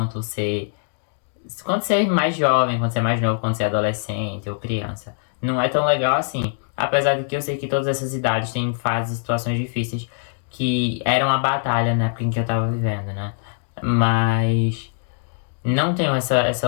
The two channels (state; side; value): silent; right; digital silence